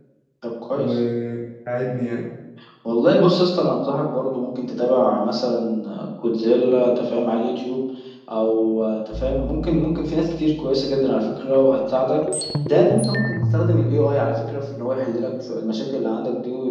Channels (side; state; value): both; identical; correlation 1.00